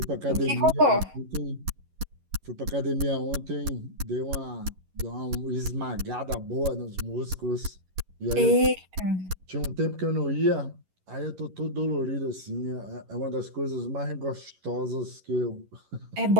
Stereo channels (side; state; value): left; late; 11 ms